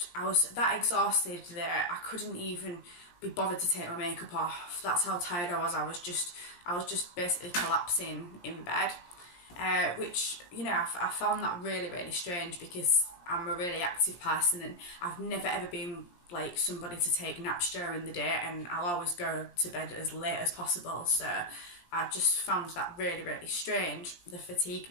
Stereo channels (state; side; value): late; right; 17 ms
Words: was that exhausted that I couldn't even be bothered to take my makeup off. That's how tired I was. I was just basically collapsing in bed, which, you know, I found that really strange, because I'm a really active person and I've never ever been like somebody to take naps during the day, and I'll always go to bed as late as possible. So I just found that really strange, the